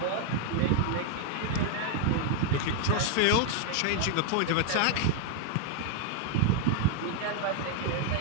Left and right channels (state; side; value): different; both; correlation 0.00